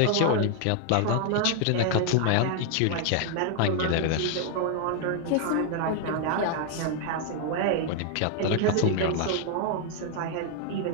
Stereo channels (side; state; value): both; different; correlation 0.00